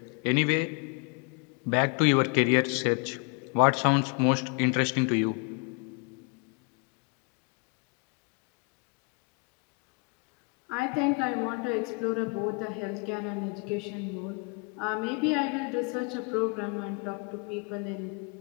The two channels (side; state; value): right; quieter; 33.3 dB